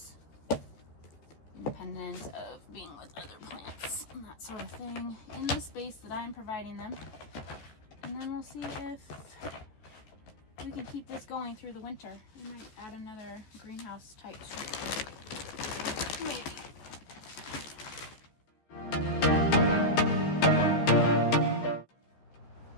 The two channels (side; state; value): right; late; 14 ms